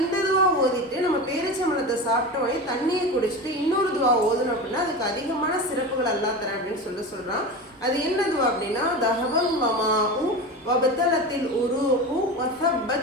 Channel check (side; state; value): both; normal; correlation 0.26